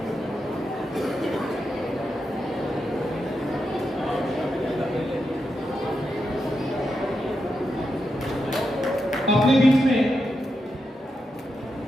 अपने बीच में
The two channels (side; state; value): both; normal; correlation 0.86